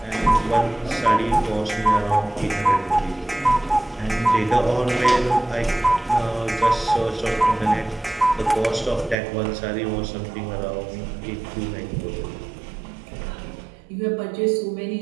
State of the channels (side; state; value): left; drops out; at 9.2 s